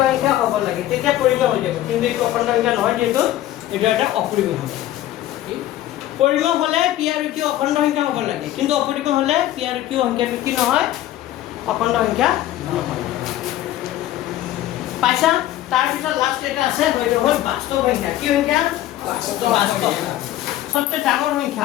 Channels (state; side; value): quieter; right; 13.8 dB